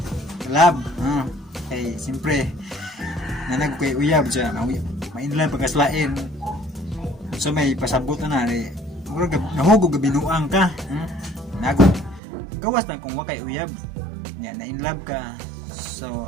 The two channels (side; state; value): left; drops out; at 12.2 s